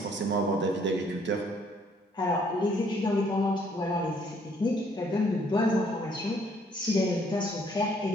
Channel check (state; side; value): normal; both; correlation 0.65